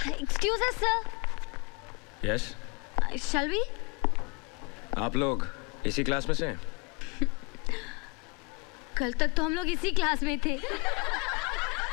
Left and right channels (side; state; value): right; quieter; 29.7 dB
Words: Excuse us sir. Yes, shall we? आप लोग इसी क्लास में से हैं? कल तक तो हम लोग इसी क्लास में थे।